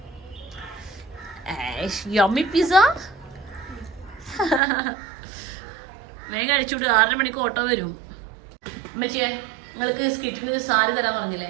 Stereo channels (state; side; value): drops out; left; at 4.6 s